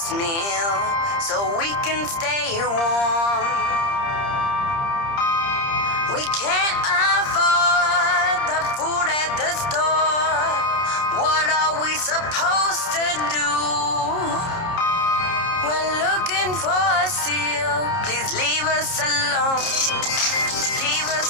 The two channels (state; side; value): late; right; 30 ms